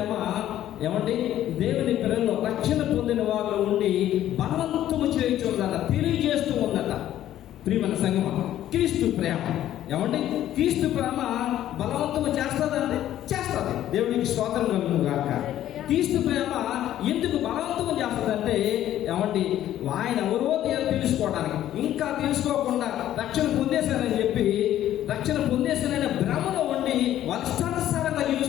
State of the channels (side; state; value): right; quieter; 12.4 dB